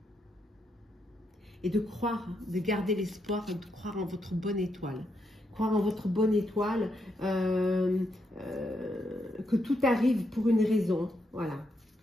et de croire, de garder l'espoir, de croire en votre bonne étoile. Croire en votre bonne étoile, que tout arrive pour une raison. Voilà.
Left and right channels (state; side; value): normal; both; correlation 0.80